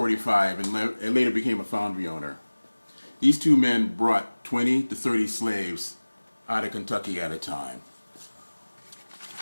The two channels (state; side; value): inverted; both; correlation -1.00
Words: and later became a foundry owner. These two men brought 20 to 30 slaves out of Kentucky at a time.